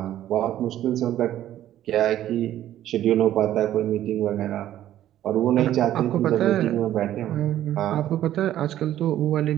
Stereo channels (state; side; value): quieter; left; 12.5 dB